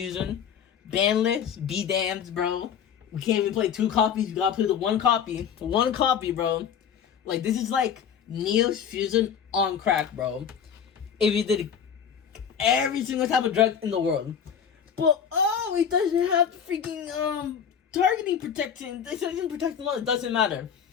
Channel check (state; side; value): quieter; right; 7.8 dB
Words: Banless, be damned, bro. We can't even play 2 copies, you gotta play the 1 copy. 1 copy, bro. Like, this is like Neo's Fusion on crack, bro. If you did every single type of drug in the world. But, oh, it doesn't have freaking, targeting protection. It doesn't protect them all. It doesn't matter.